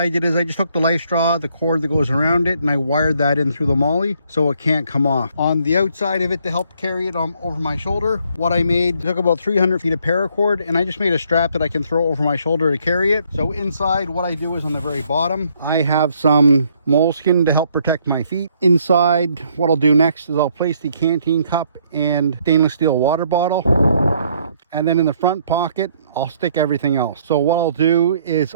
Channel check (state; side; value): inverted; both; correlation -0.67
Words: did is I just took the life straw, the cord that goes around it, and I wired that in through the Molly so it can't come off. On the outside of it to help carry it over my shoulder, what I made, took about 300 feet of paracord, and I just made a strap that I can throw over my shoulder to carry it. So inside, what I do is on the very bottom, I have some moleskin to help protect my feet. Inside, what I'll do next is I'll place the canteen cup and stainless steel water bottle. And then in the front pocket, I'll stick everything else. So what I'll do is